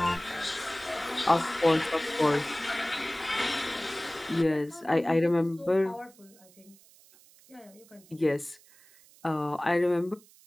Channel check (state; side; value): noise; right; hiss, 26 dB below the sound